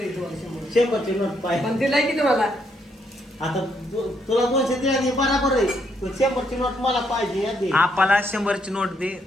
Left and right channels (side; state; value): both; normal; correlation 0.75